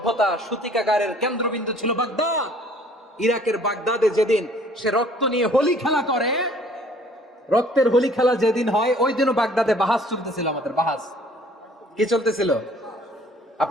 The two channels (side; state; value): both; normal; correlation 0.56